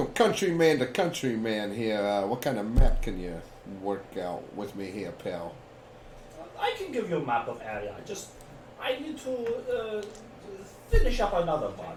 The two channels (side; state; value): both; identical; correlation 1.00